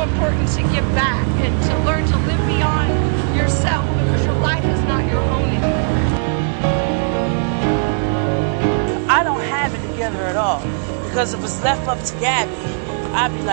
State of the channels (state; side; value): silent; left; digital silence